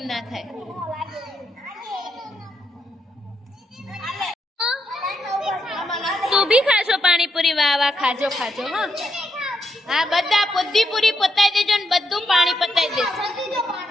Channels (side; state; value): both; normal; correlation 0.81